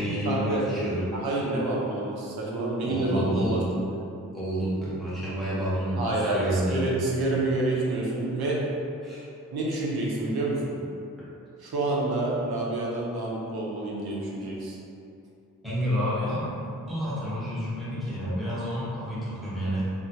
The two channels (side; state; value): both; normal; correlation 0.45